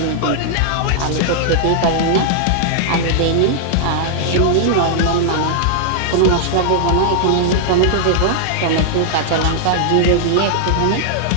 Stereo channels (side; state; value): both; different; correlation -0.01